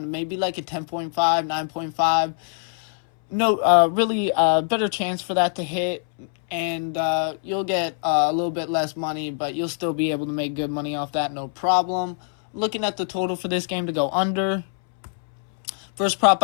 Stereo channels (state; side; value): silent; right; 63 dB below the other